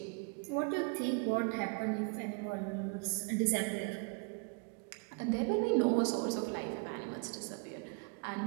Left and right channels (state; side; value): quieter; left; 33.2 dB